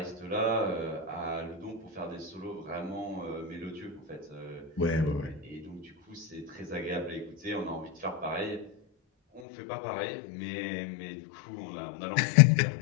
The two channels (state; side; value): drops out; right; at 9.4 s